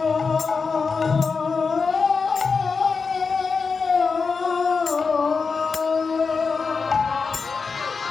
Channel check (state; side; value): quieter; right; 4.9 dB